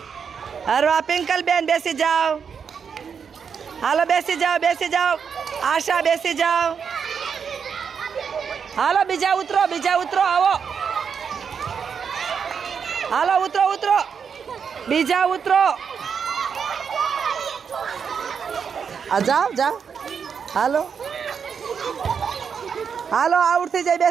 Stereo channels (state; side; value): quieter; left; 6.6 dB